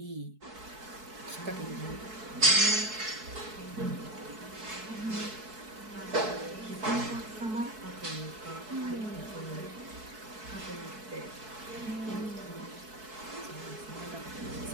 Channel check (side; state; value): left; late; 4.6 ms